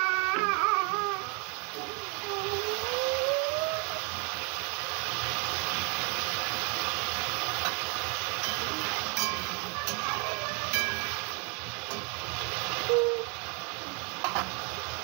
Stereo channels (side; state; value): left; quieter; 34.8 dB